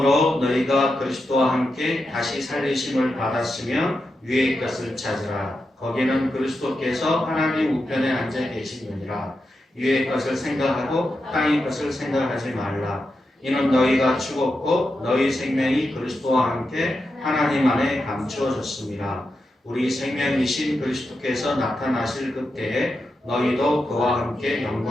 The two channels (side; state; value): both; normal; correlation 0.88